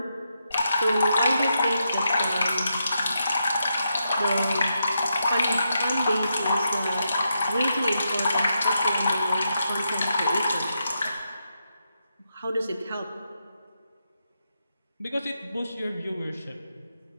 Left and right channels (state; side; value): inverted; both; correlation -0.83